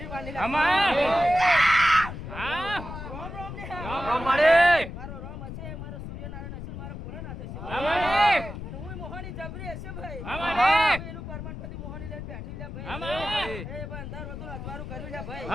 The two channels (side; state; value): left; noise; rumble, 9 dB below the sound